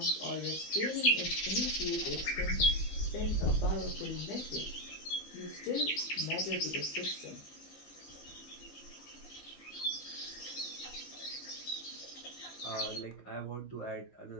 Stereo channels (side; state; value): right; late; 15 ms